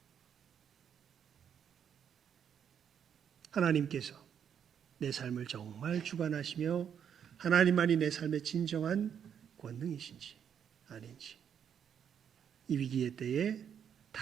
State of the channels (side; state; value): left; quieter; 8.3 dB